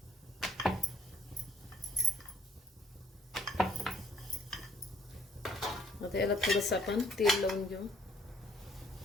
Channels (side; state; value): both; normal; correlation 0.62